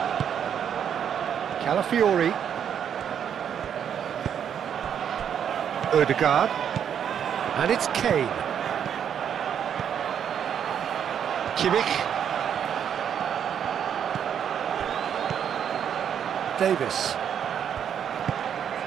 Calafiori. Ødegaard. And it's Kane. Kimmich. Davis.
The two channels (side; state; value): left; quieter; 8.6 dB